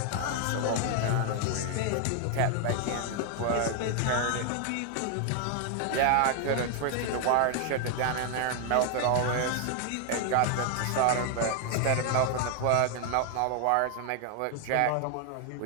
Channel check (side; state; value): both; different; correlation 0.00